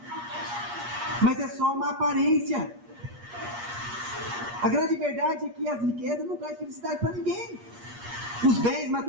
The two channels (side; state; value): left; late; 8.4 ms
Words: Mas é só uma aparência. A grande verdade é que as riquezas não trazem felicidade para ninguém. Os bens